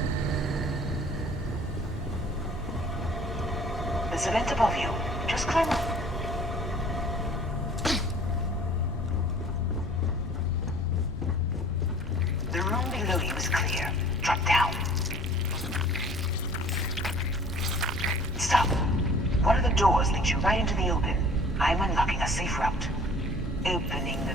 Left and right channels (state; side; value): normal; both; correlation 0.50